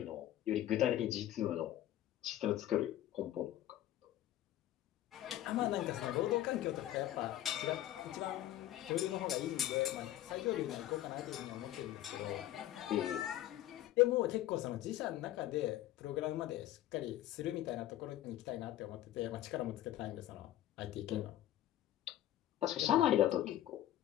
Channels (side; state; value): right; quieter; 13.4 dB